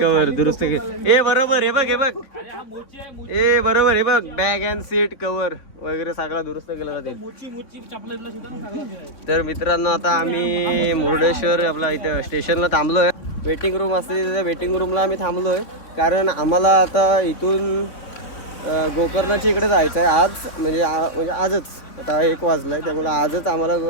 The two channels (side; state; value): right; late; 3.6 ms